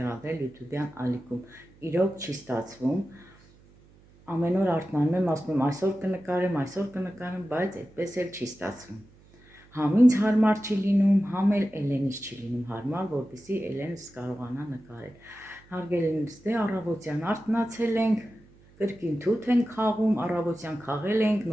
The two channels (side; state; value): right; noise; hum, 27 dB below the sound